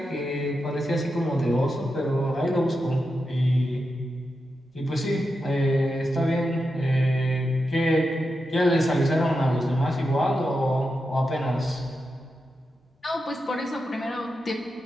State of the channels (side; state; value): both; normal; correlation 0.88